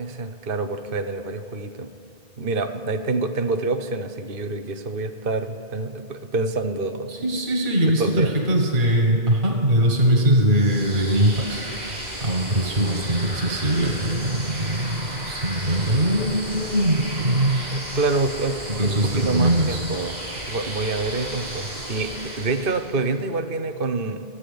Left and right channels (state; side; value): late; left; 2.0 ms